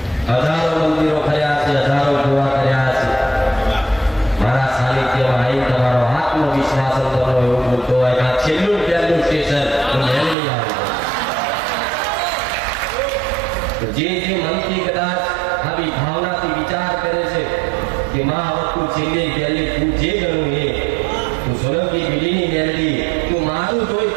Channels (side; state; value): left; drops out; at 10.4 s